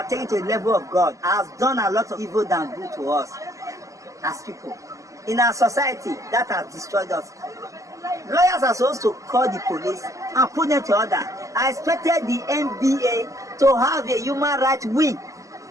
taking to the level of God has done a lot of evil than good to us as people. In our society, that has destroyed us. Lawyers are supposed to call the police and put them to order. I expected the NBA to have a human rights wing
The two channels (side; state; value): left; late; 0.16 ms